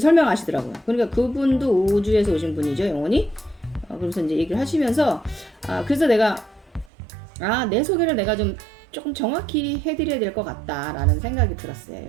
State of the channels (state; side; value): drops out; left; at 6.9 s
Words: 그러니까 그분도 우주에서 오신 분이죠, 영혼이. 그러면서 이제 얘기를 하시면서 그래서 내가 내 소개를 내가 좀 조금 정확히 해드려야 될 것 같다라는 생각이 들었어요,